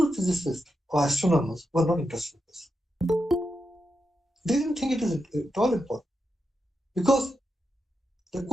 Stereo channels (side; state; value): both; normal; correlation 0.87